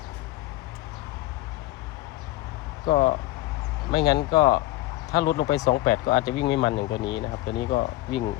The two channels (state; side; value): quieter; right; 17.1 dB